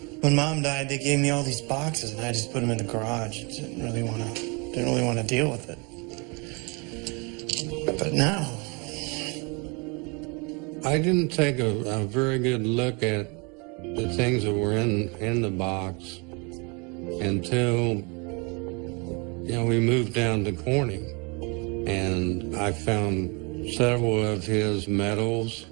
When Mom died, they gave me all these boxes, and I just put them in the garage. Didn't really want to deal with it. But now, I didn't take a very good look at the things that were in the box until, we moved down to Corning, and I found several of his medals.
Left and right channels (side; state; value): left; quieter; 30.8 dB